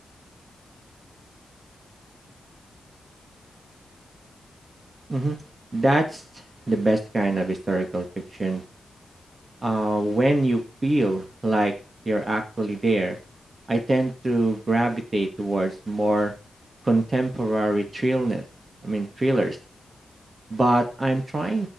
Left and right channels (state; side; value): normal; both; correlation 0.92